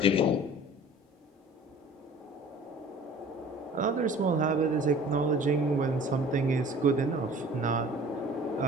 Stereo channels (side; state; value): both; normal; correlation 0.46